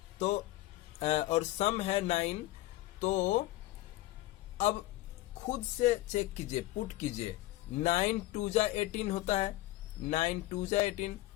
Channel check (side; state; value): right; quieter; 16.8 dB